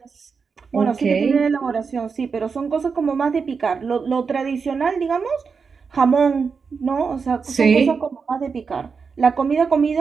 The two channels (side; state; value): left; quieter; 5.4 dB